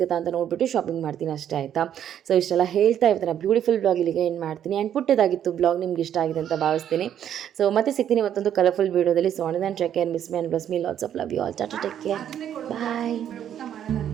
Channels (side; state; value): left; quieter; 9.9 dB